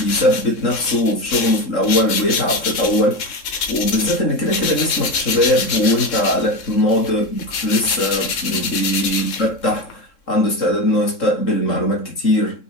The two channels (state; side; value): late; right; 3.7 ms